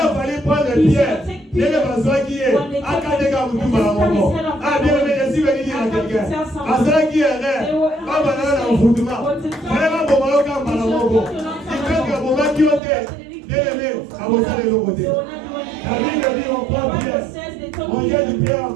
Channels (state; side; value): drops out; left; at 12.8 s